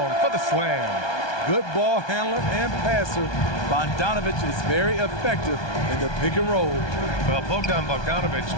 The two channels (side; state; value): right; late; 1.2 ms